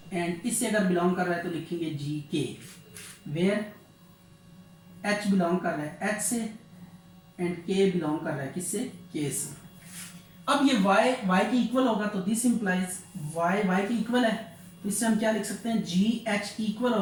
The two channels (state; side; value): identical; both; correlation 1.00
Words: एंड इससे अगर बिलोंग कर रहा है तो लिखेंगे जी के, वेयर एच बिलोंग कर रहा है एच से एंड के बिलोंग कर रहा है किससे, के से। अब ये y के इक्वल होगा तो दिस इंप्लाइज y के इक्वल है, तो इससे हम क्या लिख सकते हैं जी एच इक्वल